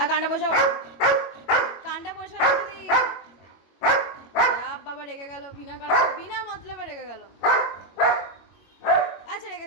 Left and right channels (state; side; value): late; right; 22 ms